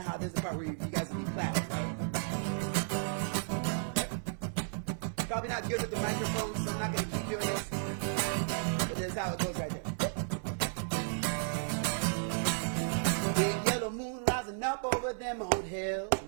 how there's a part where you guys would be clapping, right? Probably not good with the microphone, so I'm not going to keep doing this. But this is how it goes right there. Big yellow moon rising up over them old hills.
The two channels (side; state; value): left; silent; digital silence